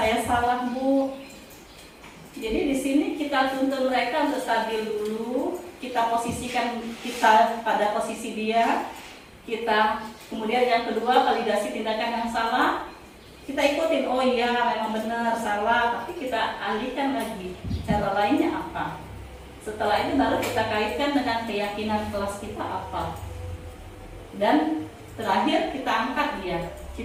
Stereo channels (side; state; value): both; identical; correlation 1.00